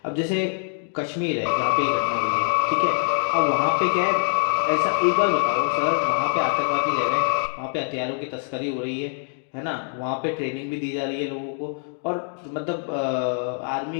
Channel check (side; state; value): right; silent; 57 dB below the other